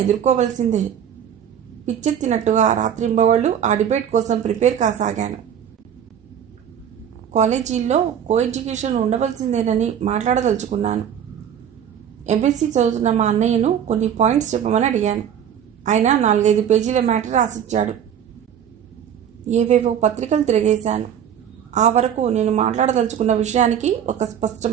ఎదుర్కోవలసిందే. పిచ్చెత్తినట్టుగా రాత్రింబవళ్ళు ఆ డిబేట్ కోసం ప్రిపేర్ కాసాగాను. కాలేజీల్లో కో ఎడ్యుకేషన్ ఉండవలసిందేనని మాట్లాడదలుచుకున్నాను. ఎంఎస్సీ చదువుతున్న మా అన్నయ్యను కొన్ని పాయింట్స్ చెప్పమని అడిగాను. ఆయన 4-5 పేజీల మ్యాటర్ రాసిచ్చాడు. ఏవేవో పత్రికలు తిరిగేశాను. ఆ వరకు నేను మాట్లాడదలుచుకున్న విషయానికి ఒక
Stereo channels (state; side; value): quieter; left; 9.1 dB